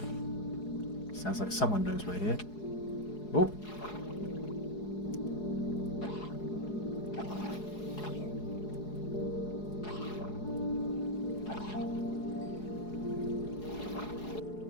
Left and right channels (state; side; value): late; right; 4.8 ms